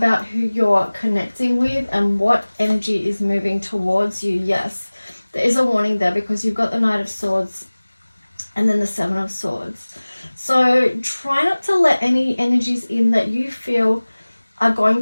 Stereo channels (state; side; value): inverted; both; correlation -1.00